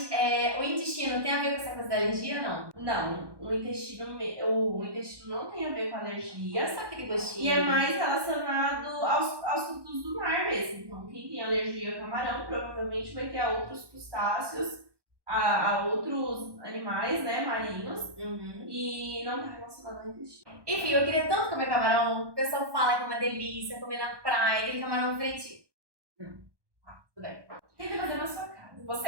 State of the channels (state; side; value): late; left; 1.2 ms